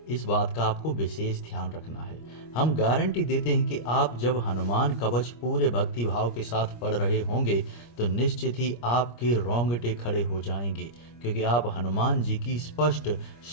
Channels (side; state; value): right; late; 25 ms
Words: इस बात का आपको विशेष ध्यान रखना है। हम गारंटी देते हैं कि आप जब हनुमान कवच पूरे भक्ति भाव के साथ पढ़ रहे होंगे तो निश्चित ही आपके रोंगटे खड़े हो जाएंगे, क्योंकि आप हनुमान जी की स्पष्ट